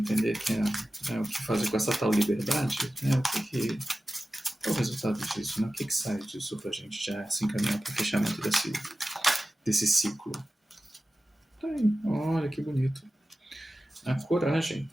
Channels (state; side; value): normal; both; correlation 0.95